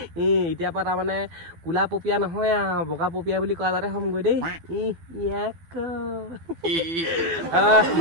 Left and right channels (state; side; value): late; left; 12 ms